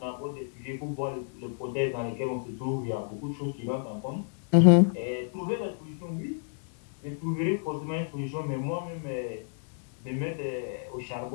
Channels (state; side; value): silent; right; digital silence